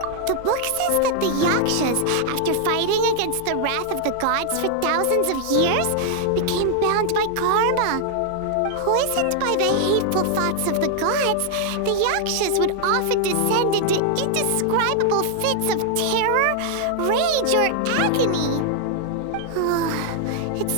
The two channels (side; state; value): both; different; correlation 0.00